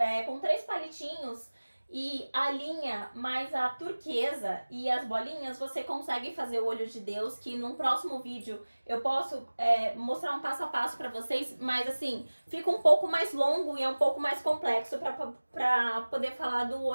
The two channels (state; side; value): inverted; both; correlation -1.00